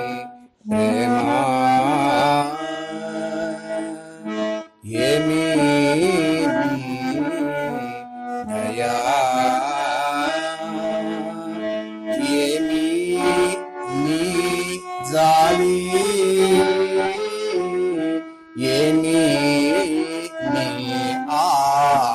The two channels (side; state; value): both; identical; correlation 1.00